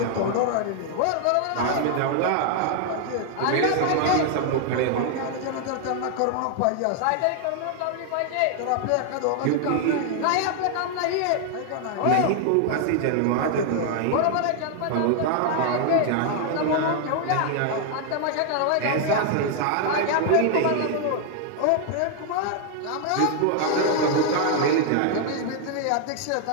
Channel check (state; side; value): different; both; correlation 0.00